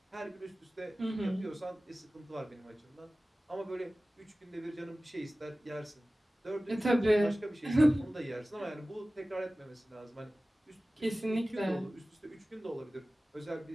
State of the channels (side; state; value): both; normal; correlation 0.97